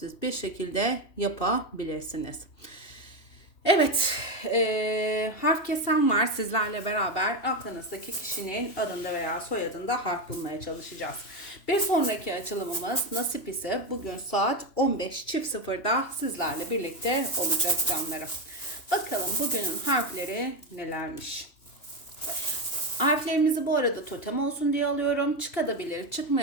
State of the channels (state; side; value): late; right; 3.1 ms